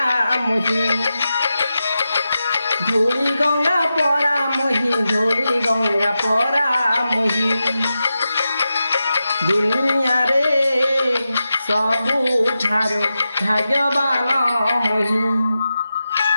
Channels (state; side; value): inverted; both; correlation -0.90